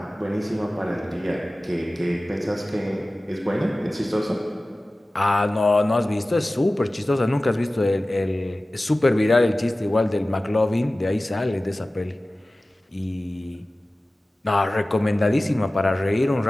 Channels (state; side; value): normal; both; correlation 0.97